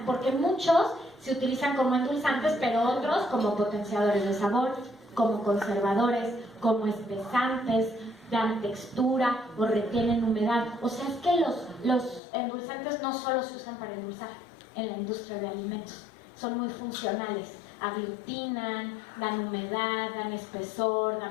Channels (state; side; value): drops out; right; at 12.2 s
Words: porque muchos se utilizan como endulzantes, pero otros como potenciadores de sabor, como conservadores, como espesantes, dan textura o retienen humedad. O sea, es que los endulzantes no solo se usan para endulzar en la industria de alimentos, son muy funcionales, aglutinan, dan humedad, dan espesor,